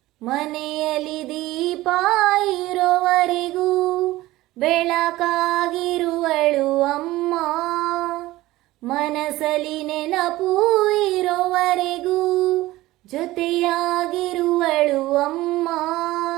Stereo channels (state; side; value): quieter; left; 17.5 dB